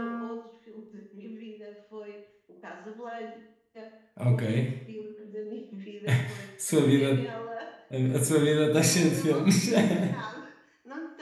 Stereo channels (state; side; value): identical; both; correlation 1.00